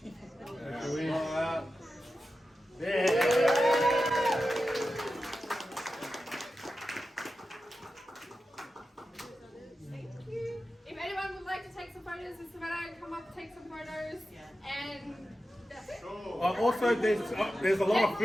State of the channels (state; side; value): normal; both; correlation 0.92